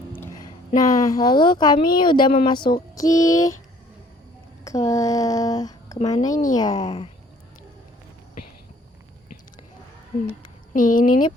Nah, lalu kami udah memasuki ke kemana ini ya? Nih, ini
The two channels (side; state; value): both; normal; correlation 0.57